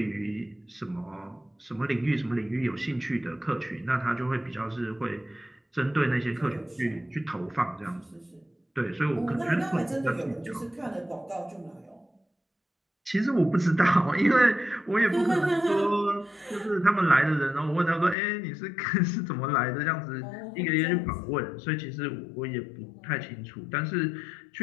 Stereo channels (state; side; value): drops out; right; at 18.2 s